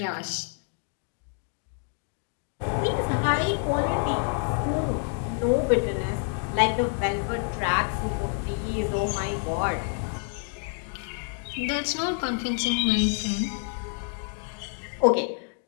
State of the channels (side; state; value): right; quieter; 39.5 dB